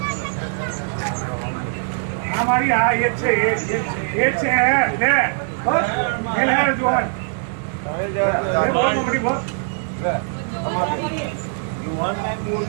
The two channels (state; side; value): silent; left; digital silence